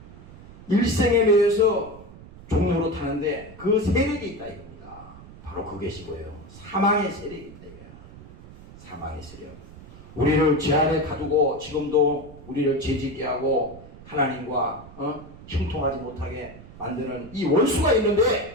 일생에 매여서 종로로 타는데 그 세력이 있다 이겁니다. 바로 그것이 뭐예요? 사망의 세력이 있다 이거예요. 사망의 세력. 우리를 죄 아래 가두고 지금도 우리를 죄짓게 하고 하나님과 형통하지 못하게 만드는 이 원수가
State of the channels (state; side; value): noise; right; rumble, 18 dB below the sound